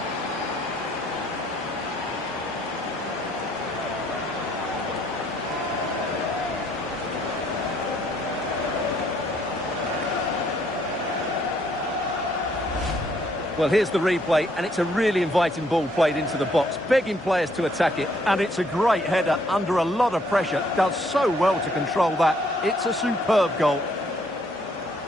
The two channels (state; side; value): normal; both; correlation 0.67